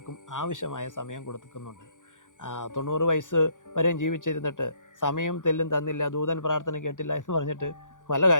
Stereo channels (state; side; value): late; right; 0.87 ms